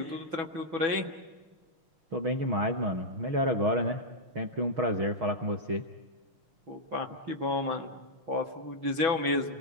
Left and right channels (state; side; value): late; left; 6.1 ms